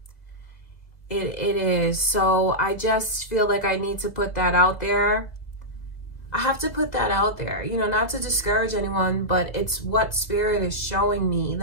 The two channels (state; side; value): late; right; 2.0 ms